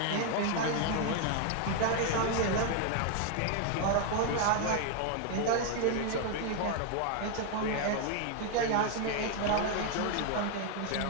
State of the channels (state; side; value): different; both; correlation 0.00